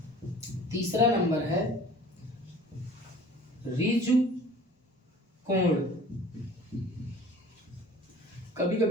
तीसरा नंबर है ऋजु कोण। कभी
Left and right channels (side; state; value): both; normal; correlation 0.46